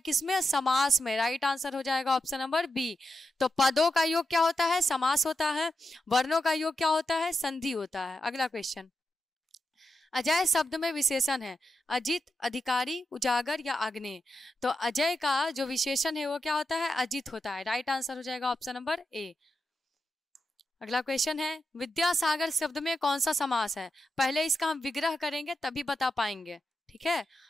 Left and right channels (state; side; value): normal; both; correlation 0.88